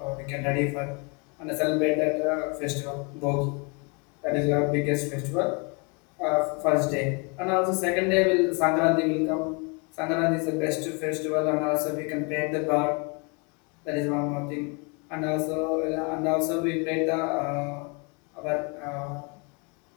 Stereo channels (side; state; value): right; quieter; 33.0 dB